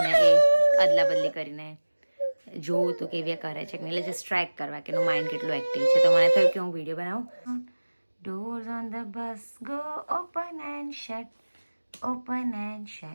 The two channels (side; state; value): both; inverted; correlation -1.00